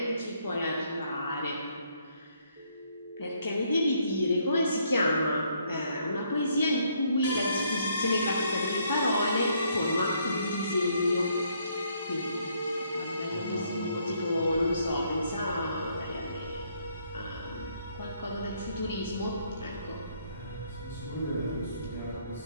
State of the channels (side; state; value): both; inverted; correlation -0.69